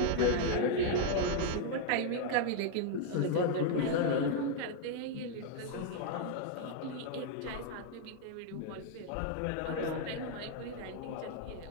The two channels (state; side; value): different; both; correlation 0.00